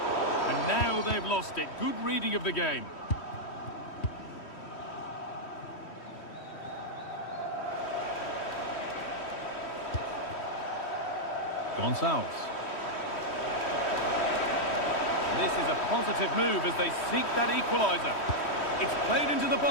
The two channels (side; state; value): right; late; 3.1 ms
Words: And now they've lost it. Good reading of the game. Gonçalves. This is a positive move as they seek that equaliser. It's played into the